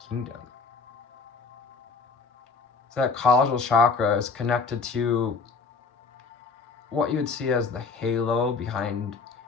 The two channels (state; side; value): quieter; right; 4.7 dB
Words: kingdom. So that causal chakra is connected to what you would see as the halo behind